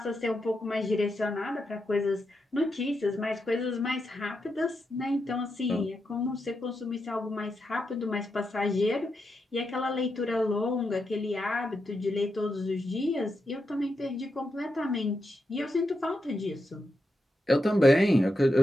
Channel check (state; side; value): normal; both; correlation 0.85